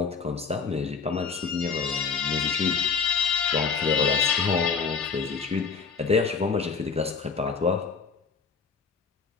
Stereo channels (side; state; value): right; quieter; 5.4 dB